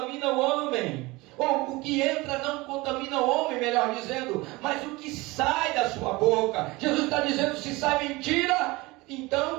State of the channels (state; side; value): quieter; left; 22.3 dB